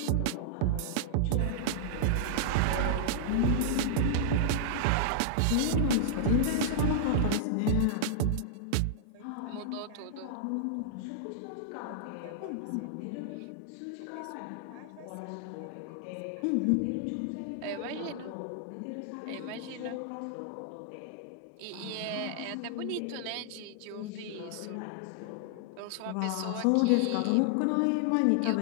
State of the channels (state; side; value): different; both; correlation -0.01